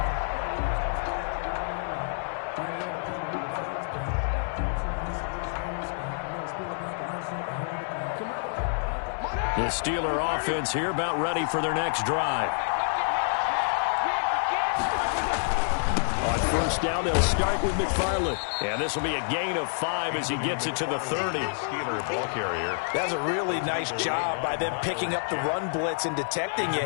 The Steeler offense here about ready for their next drive. On first down, they'll start with McFarland. And this will be a gain of 5 as he gets it to the 30. Steeler ball carrier. That's a really nice job by them picking up the run blitz and detecting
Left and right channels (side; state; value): right; silent; digital silence